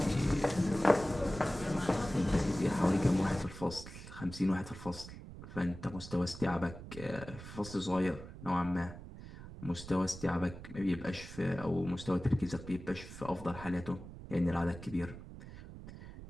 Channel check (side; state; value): right; noise; rumble, 13 dB below the sound